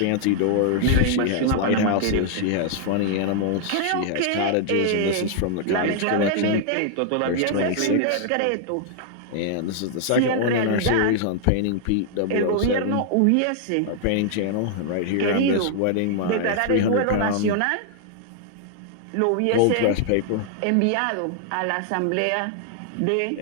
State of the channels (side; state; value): both; different; correlation 0.00